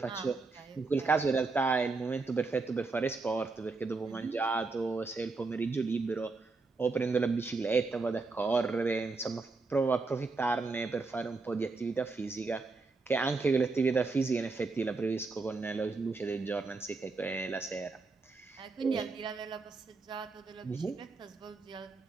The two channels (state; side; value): quieter; left; 3.9 dB